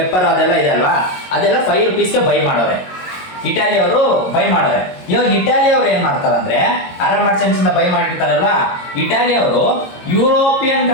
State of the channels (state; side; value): late; right; 22 ms